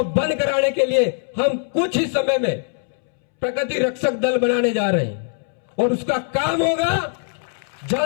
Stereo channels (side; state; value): right; silent; 64 dB below the other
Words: बंद कराने के लिए हम कुछ ही समय में प्रकृति रक्षक दल बनाने जा रहे हैं और उसका काम होगा